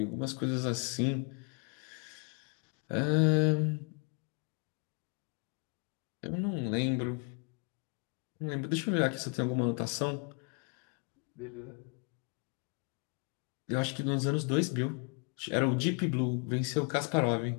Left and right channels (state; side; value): quieter; right; 36.8 dB